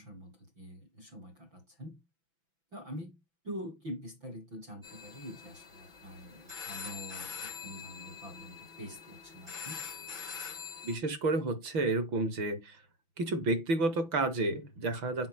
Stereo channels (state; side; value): late; left; 6.0 ms